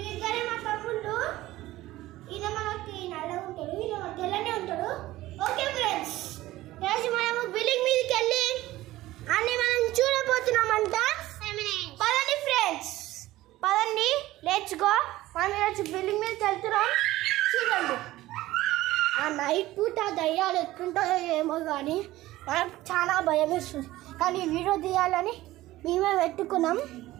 మా తమ్ముళ్ళు. ఈయన మనకి నల్లగా ఉంటాడు, ఈయన తెల్లనే ఉంటాడు. ఓకే ఫ్రెండ్స్, ఈరోజు మనము బిల్డింగ్ మీదకి వెళ్ళి అన్ని మనం చూడబోతున్నామంట. పదండి ఫ్రెండ్స్, పదండి, లెట్స్ గో. మనం ఈరోజు బిల్డింగ్ మీదకి వెళ్తున్నాం. చూడండి, ఆ నైట్ పూట దయ్యాలు ఎట్లుంటాయో ఏమో కానీ మనకు చాలా భయం వేస్తుంది. కానీ వీడియో తీయాలని మేమే పెట్టుకున్నాం.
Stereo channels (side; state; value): left; quieter; 16.7 dB